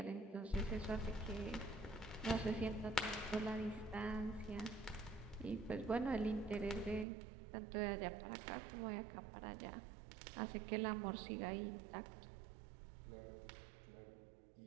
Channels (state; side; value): drops out; left; at 7.1 s